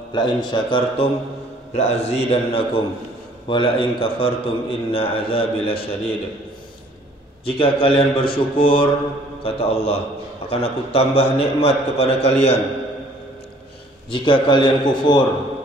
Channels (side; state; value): both; normal; correlation 0.57